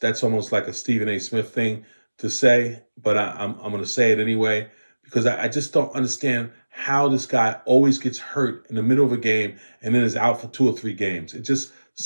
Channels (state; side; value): inverted; both; correlation -1.00